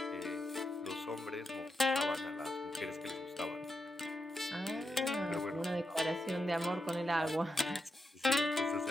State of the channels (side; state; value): both; normal; correlation 0.86